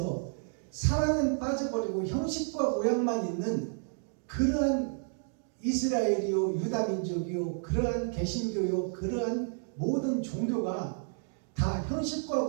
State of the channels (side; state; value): left; silent; 57 dB below the other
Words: 사랑은 빠져버리고 형식과 모양만 있는 그러한 이스라엘이요, 유다민족이요, 그러한 개신교요, 그러한 모든 종교가 다 형식과